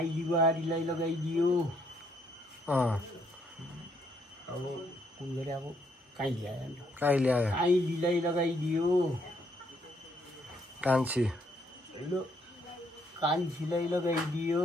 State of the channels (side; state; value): both; normal; correlation 0.71